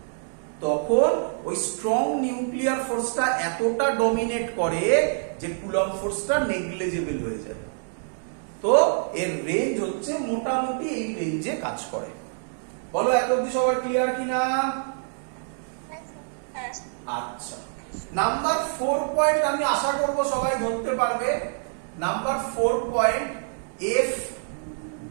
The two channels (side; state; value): left; silent; digital silence